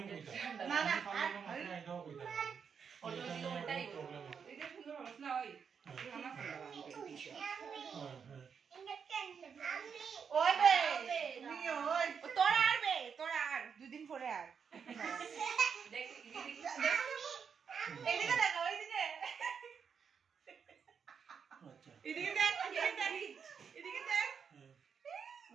না না ফটো দিকে ওটাই এটা সুন্দর হবে না ওই ওই বে তুমি ওই তোরা আর দুদিন পরে আর দেখ এদিকে দেখো ওইদিকে আচ্ছা এদিকে দেখ এদিকে দেখ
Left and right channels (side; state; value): left; quieter; 6.6 dB